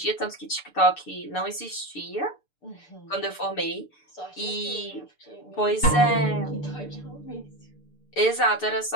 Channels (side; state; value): right; late; 6.8 ms